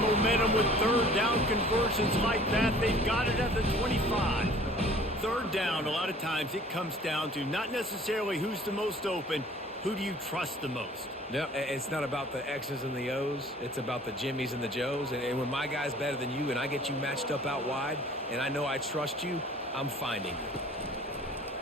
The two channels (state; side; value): normal; both; correlation 0.50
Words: momentum with 3rd down conversions like that. They've got it at the 25. 3rd down, a lot of times it comes down to not necessarily who's the most open, who do you trust the most? No, it's not about the X's and the O's. It's about the Jimmies and the Joes. And when my guy's better than you and I get you matched up out wide and I know I trust you, I'm finding you.